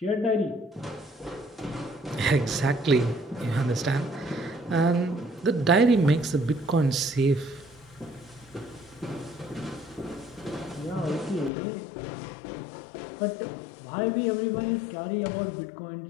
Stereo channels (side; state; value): right; drops out; at 11.5 s